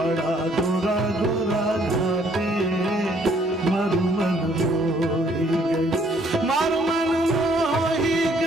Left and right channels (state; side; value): normal; both; correlation 0.64